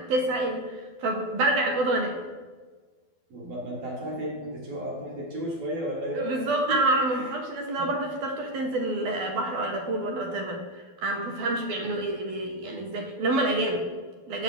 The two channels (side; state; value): left; late; 12 ms